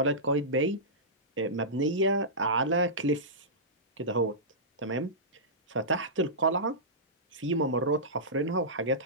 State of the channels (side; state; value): both; normal; correlation -0.17